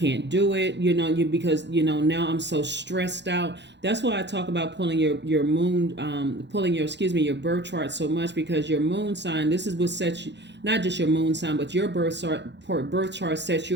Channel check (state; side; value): late; left; 0.51 ms